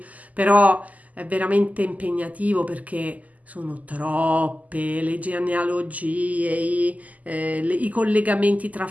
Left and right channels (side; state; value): left; late; 0.076 ms